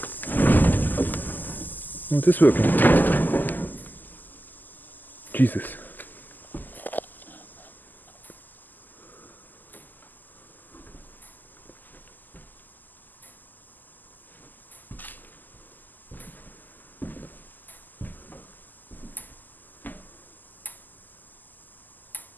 Oh, it is working. Jesus.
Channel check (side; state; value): right; late; 0.086 ms